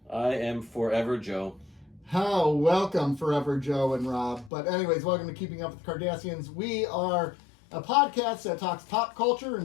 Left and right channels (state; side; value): drops out; right; at 4.5 s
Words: I am Forever Joe. How welcome, Forever Joe and Rob. But anyways, welcome to Keeping Up with the Cardassians. We are a podcast that talks pop culture and